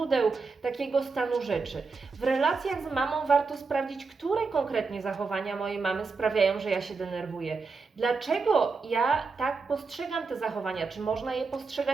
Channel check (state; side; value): quieter; left; 4.5 dB